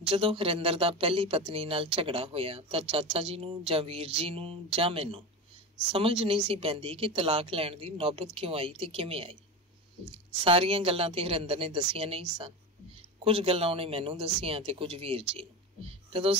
ਜਦੋਂ ਹਰਿੰਦਰ ਦਾ ਪਹਿਲੀ ਪਤਨੀ ਨਾਲ ਝਗੜਾ ਹੋਇਆ ਤਾਂ ਚਾਚਾ ਜੀ ਨੂੰ ਜਾਂ ਵੀਰ ਜੀ ਨੂੰ ਜਾਂ ਮੈਨੂੰ ਸਮਝ ਨਹੀਂ ਸੀ ਪੈਂਦੀ ਕਿ ਤਲਾਕ ਲੈਣ ਦੀ ਨੌਬਤ ਕਿਉਂ ਆਈ ਤੇ ਕਿਵੇਂ ਆਈ। ਸਾਰੀਆਂ ਗੱਲਾਂ ਤੇ ਹਰਿੰਦਰ ਨੇ ਦੱਸੀਆਂ ਨਹੀਂ ਸਨ। ਕੁਝ ਗੱਲਾਂ ਉਹਨੇ ਮੈਨੂੰ ਦੱਸੀਆਂ ਤੇ ਕੁਝ ਵੀਰ ਜੀ ਨੂੰ। ਜਦੋਂ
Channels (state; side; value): normal; both; correlation 0.24